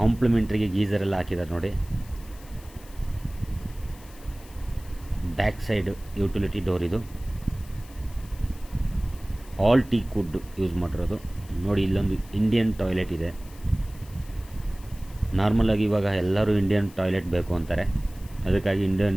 ಗೀಝರ್ ಎಲ್ಲ ಹಾಕಿದ್ದಾರೆ ನೋಡಿ. ಬ್ಯಾಕ್ ಸೈಡ್ ಯುಟಿಲಿಟಿ ಡೋರ್ ಇದು. ಆಲ್ ಟೀಕ್ವುಡ್ ಯೂಸ್ ಮಾಡಿರೋದು ನೋಡಿ. ಇಲ್ಲೊಂದು ಇಂಡಿಯನ್ ಟಾಯ್ಲೆಟ್ ಇದೆ. ನಾರ್ಮಲಾಗಿ ಇವಾಗ ಎಲ್ಲರೂ ಇಂಡಿಯನ್ ಟಾಯ್ಲೆಟ್ ಬೇಕು ಅಂತಾರೆ, ಅದಕ್ಕಾಗಿ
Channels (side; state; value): left; noise; hiss, 23 dB below the sound